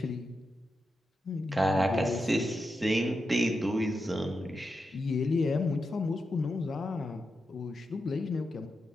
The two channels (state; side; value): normal; both; correlation 0.88